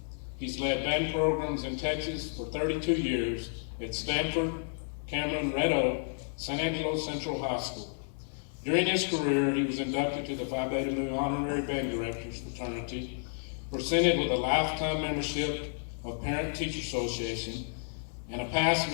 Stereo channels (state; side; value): silent; right; 57 dB below the other